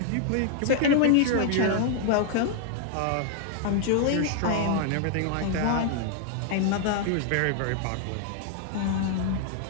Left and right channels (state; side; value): different; both; correlation 0.00